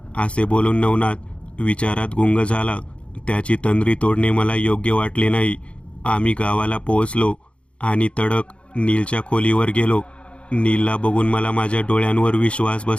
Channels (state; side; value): late; right; 0.059 ms